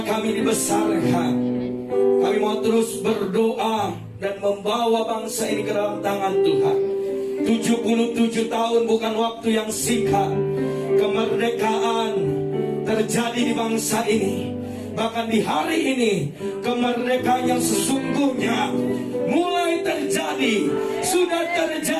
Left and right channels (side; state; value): both; identical; correlation 1.00